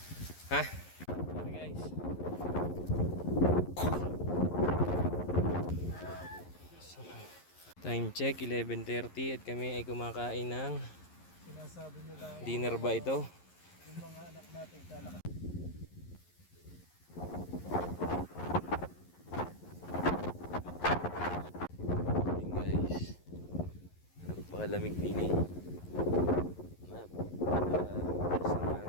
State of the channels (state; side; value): late; right; 11 ms